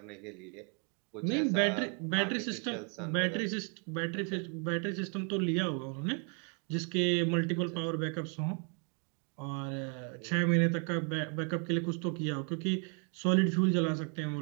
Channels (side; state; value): left; quieter; 38.8 dB